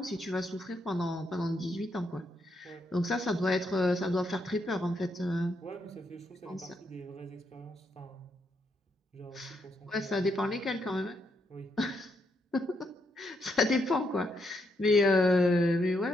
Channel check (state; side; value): normal; both; correlation 0.78